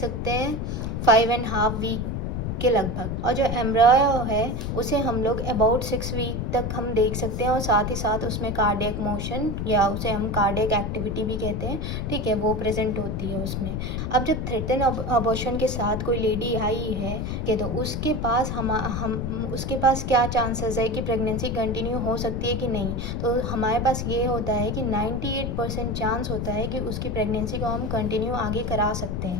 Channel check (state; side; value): noise; left; rumble, 2 dB below the sound